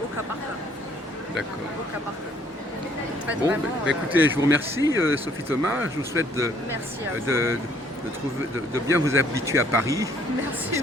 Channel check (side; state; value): both; normal; correlation 0.63